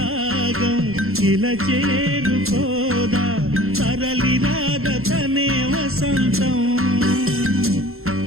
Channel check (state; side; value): late; left; 0.62 ms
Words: ఇలా చేరుకోదా తరలి రాద తనే వసంతం